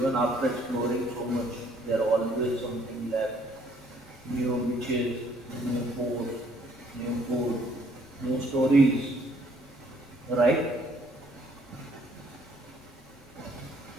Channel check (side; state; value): left; noise; rumble, 25 dB below the sound